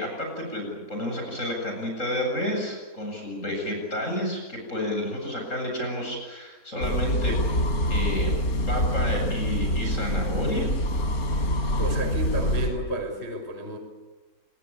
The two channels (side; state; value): right; late; 3.8 ms